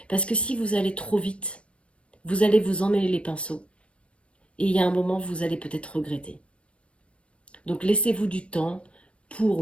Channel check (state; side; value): late; right; 0.059 ms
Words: Parce que si vous allez trop vite, vous allez vous emmêler les pinceaux. Et il y a un moment, vous allez peut-être regretter. Donc laissez-vous du temps